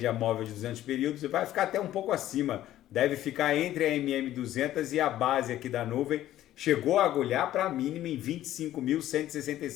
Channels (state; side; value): quieter; right; 13.3 dB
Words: móvel de 200 períodos e vai ficar até um pouco acima. Deve ficar entre a MM200 e a base aqui da nuvem. Chegou a agulhar para a mínima em